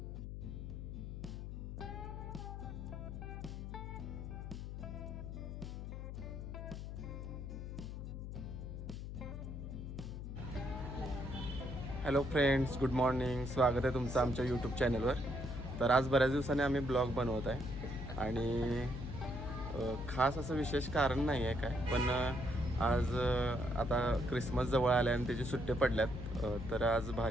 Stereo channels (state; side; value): noise; left; hum, 7 dB below the sound